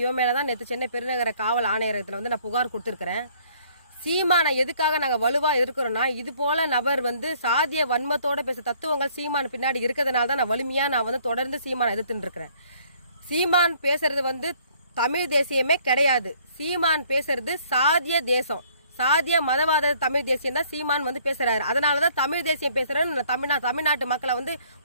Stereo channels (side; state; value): both; inverted; correlation -0.61